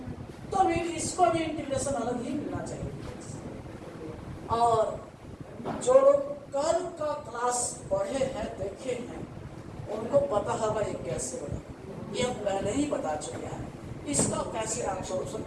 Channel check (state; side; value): identical; both; correlation 1.00